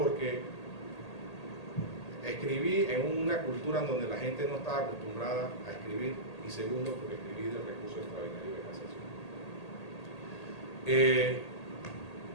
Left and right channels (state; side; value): late; right; 1.8 ms